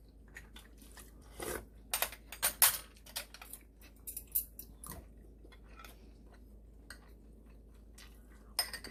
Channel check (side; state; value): both; identical; correlation 1.00